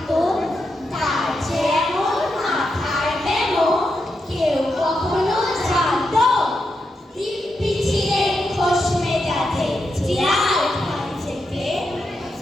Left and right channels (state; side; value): normal; both; correlation 0.85